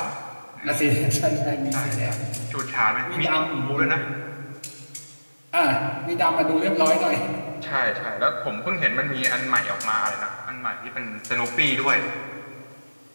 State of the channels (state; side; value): inverted; both; correlation -1.00